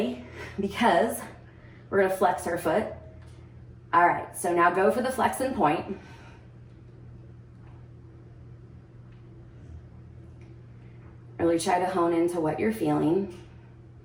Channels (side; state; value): both; identical; correlation 1.00